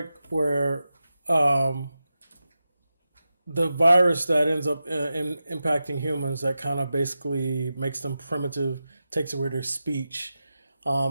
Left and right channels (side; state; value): both; inverted; correlation -0.92